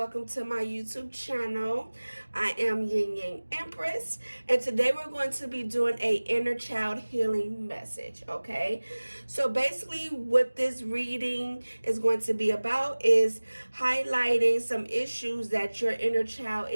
to my YouTube channel. I am Yin Yang Empress, and today we're going to be doing a inner child healing message, okay? So basically what this reading is going to be about is highlighting some issues that your inner child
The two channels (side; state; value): both; inverted; correlation -1.00